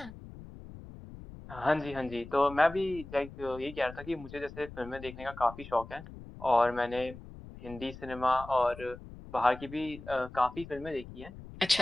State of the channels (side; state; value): left; noise; rumble, 15 dB below the sound